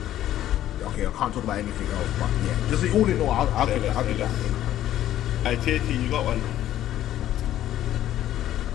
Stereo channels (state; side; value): quieter; right; 12.6 dB